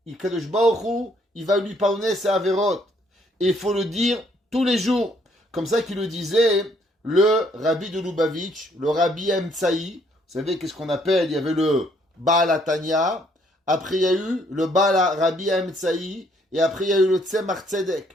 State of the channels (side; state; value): both; normal; correlation 0.67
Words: Kadosh Baruch Hu, il va lui pardonner ses avérotes. Et il faut le dire tous les jours. Comme ça qu'il le disait le Rabbi de Lubavitch, le Rabbi Emtsaï. Vous savez qu'est-ce qu'on appelle? Il y avait le Baal Atania. Après, il y a eu le Baal Rabbi Emtsaï. Et après, il y a eu le Tzemach